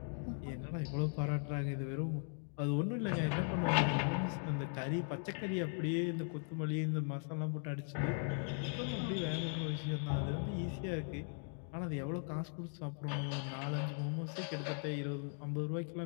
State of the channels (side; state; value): right; silent; 52 dB below the other